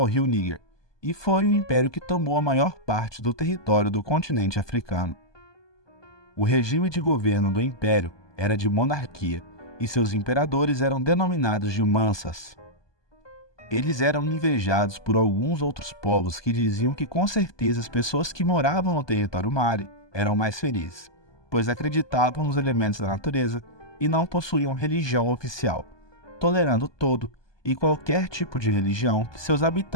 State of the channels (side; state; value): right; late; 1.2 ms